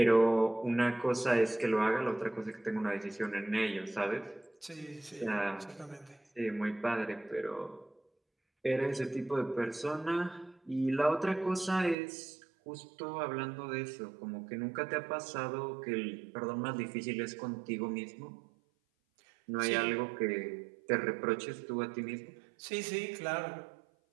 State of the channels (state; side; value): drops out; left; at 12.0 s